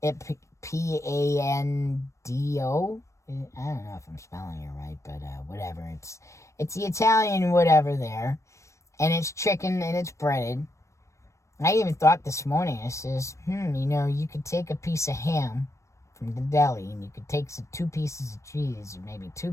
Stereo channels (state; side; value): late; right; 0.15 ms